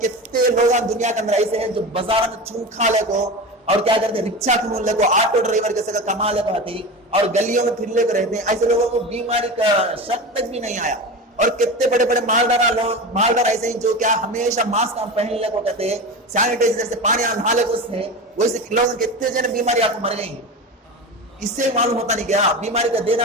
کتنے لوگ دنیا کے اندر ایسے ہیں جو بازار میں چون کھا لے کو اور کیا کرتے ہیں رکشا کھول لے کو, آٹو ڈرائیور کے ساتھ کما لے کو آتی اور گلیوں میں پھر لے کے رہتے ہیں. ایسے لوگوں کو بیماری کا شک تک بھی نہیں آیا. اور کتنے بڑے بڑے مالدار ایسے ہیں جو کیا ہمیشہ ماسک پہن لے کو کہتے ہیں, سینیٹائزر سے پانی نہا لے کو ہے, ویسے لوگ کتنے جنے بیماری آپ کو مر گئی ہیں. اس سے معلوم ہوتا نہیں کیا بیماری کا دینا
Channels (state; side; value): normal; both; correlation 0.26